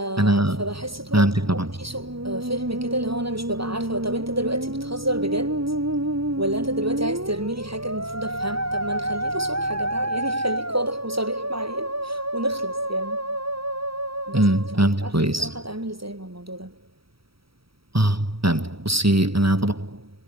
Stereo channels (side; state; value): left; late; 0.75 ms